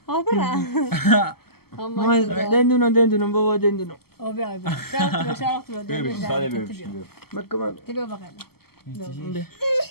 دندونم بابا دندونم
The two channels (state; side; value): late; right; 0.96 ms